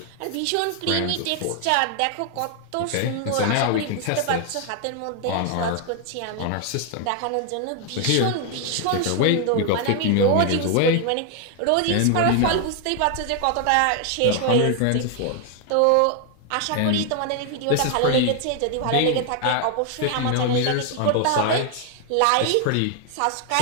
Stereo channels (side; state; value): both; different; correlation 0.00